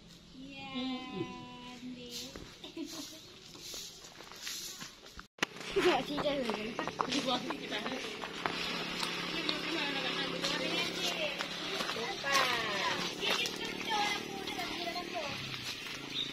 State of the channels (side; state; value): both; identical; correlation 1.00